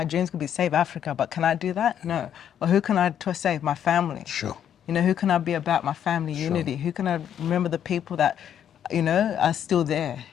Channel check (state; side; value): quieter; right; 9.5 dB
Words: dreams could be save Africa, but can I do that? No. Or who can I save? My family. Sure. You know, who can I be about? My family unity. Who can I remember the people that, you know, are still there,